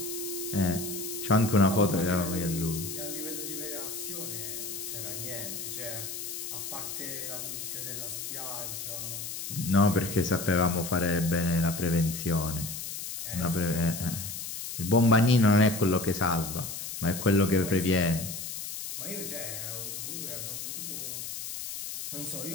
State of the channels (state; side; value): noise; left; hiss, 7 dB below the sound